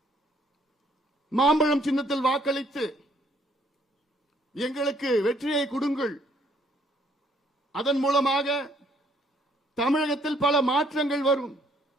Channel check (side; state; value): both; normal; correlation 0.66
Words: மாம்பழம் சின்னத்தில் வாக்களித்து எங்களுக்கு வெற்றியை கொடுங்கள். அதன் மூலமாக தமிழகத்தில் பல மாற்றங்கள் வரும்.